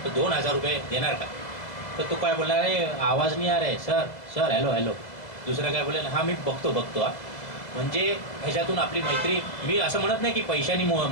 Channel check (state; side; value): late; right; 2.0 ms